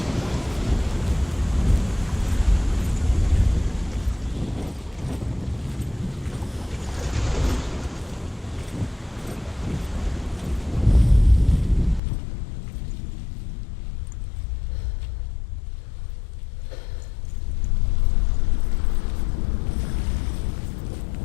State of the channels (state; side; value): drops out; right; at 12.0 s